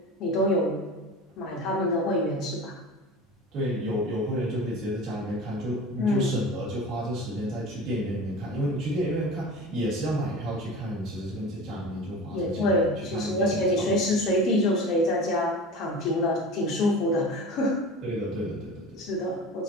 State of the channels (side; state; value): both; normal; correlation 0.34